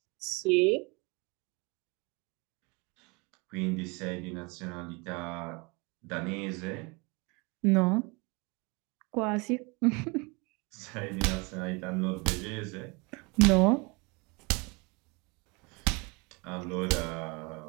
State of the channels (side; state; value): left; quieter; 28.4 dB